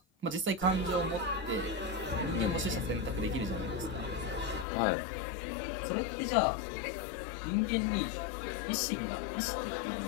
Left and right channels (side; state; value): right; drops out; at 4.7 s